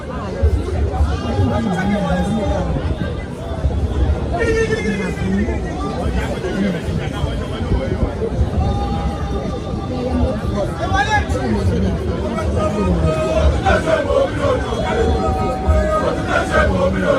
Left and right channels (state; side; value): identical; both; correlation 1.00